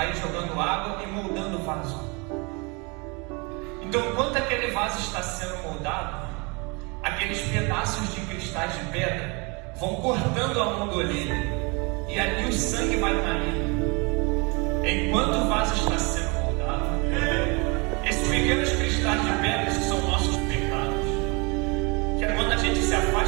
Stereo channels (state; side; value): quieter; left; 29.8 dB